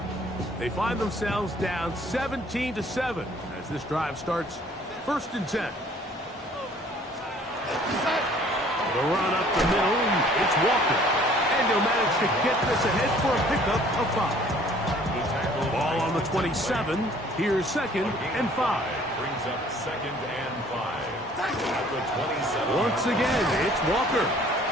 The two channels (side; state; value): both; normal; correlation 0.56